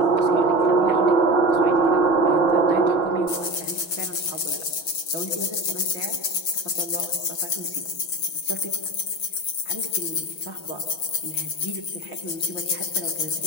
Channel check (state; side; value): late; right; 6.3 ms